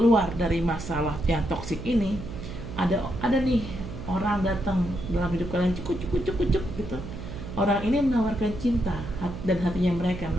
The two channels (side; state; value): right; noise; hum, 10 dB below the sound